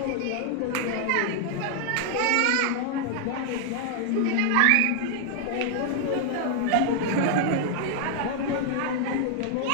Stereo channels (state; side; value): different; both; correlation 0.00